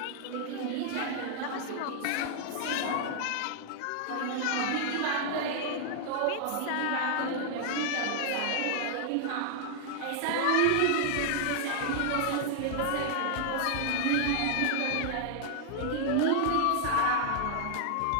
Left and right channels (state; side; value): different; both; correlation 0.00